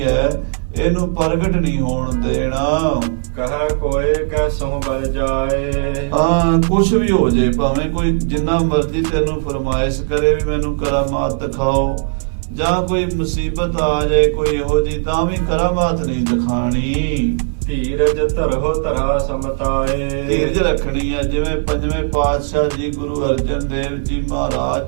ਹੈ, ਇਹਨੂੰ ਪ੍ਰਗਟ ਨਹੀਂ ਹੋਣ ਦੇਣਾ। ਕਹੈ ਕੋਏ ਕੈਸਹੁ ਬਲ ਜਾਏ। ਹਾਂ, ਕੁਛ ਵੀ ਹੋ ਜੇ, ਭਾਵੇਂ ਕੋਈ ਜਿੰਨਾ ਮਰਜ਼ੀ ਤੈਨੂੰ ਫਰਮਾਇਸ਼ ਕਰੇ ਵੀ ਮੈਨੂੰ ਕਰਾਮਾਤ ਦਿਖਾਓ, ਜਾਂ ਕੋਈ ਮੁਸੀਬਤ ਆ ਜਾਏ ਕੋਈ ਇਹੋ ਜੀ, ਤਾਂ ਵੀ ਕਰਾਮਾਤ ਨਹੀਂ ਦਿਖਾਣੀ। ਧੀਰਜ ਧਰਹੁ ਧਰਾ ਸਮਤਾਏ। ਧੀਰਜ ਰੱਖਣੀ ਹੈ। ਜਿਵੇਂ ਪੰਜਵੇਂ ਪਾਤਸ਼ਾਹ ਜੀ ਗੁਰੂ ਅਰਜਨ ਦੇਵ ਜੀ ਮਹਾਰਾਜ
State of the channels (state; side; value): silent; left; digital silence